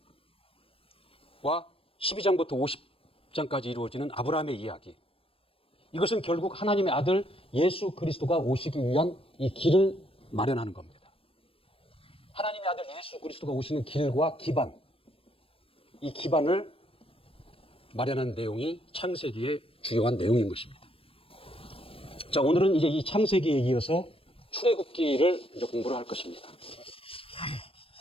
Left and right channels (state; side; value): late; right; 0.27 ms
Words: 12장부터 50장까지 이루어지는 아브라함의 이야기, 이것은 결국 하나님의 아들 예수 그리스도가 오시기 위한 이 길을 마련하는 겁니다. 하나님의 아들 예수 그리스도가 오시는 길과 기반, 이 기반을 마련한 내용이 창세기의 주요한 내용인 것입니다. 자, 오늘은 이제 이 창세기에 이어서 출애굽기를 이제 공부를 할 것입니다.